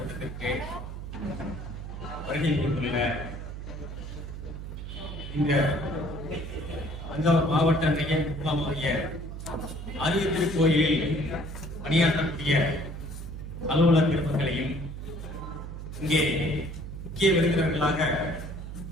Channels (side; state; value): right; noise; hum, 8 dB below the sound